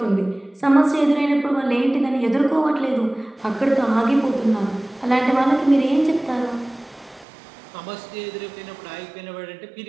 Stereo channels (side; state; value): left; drops out; at 7.2 s